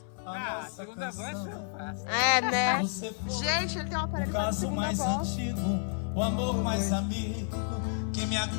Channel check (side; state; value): right; silent; 57 dB below the other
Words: Ah, segunda voz eu faço. É, né? Gente, ele tem um aparelho pra segunda mais voz. antigo, o amor mais amigo que me